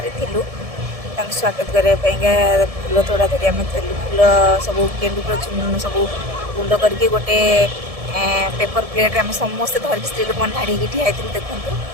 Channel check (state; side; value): late; left; 1.7 ms